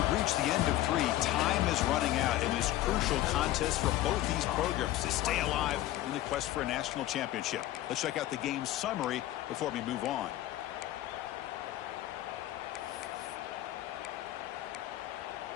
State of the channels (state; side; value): quieter; right; 14.8 dB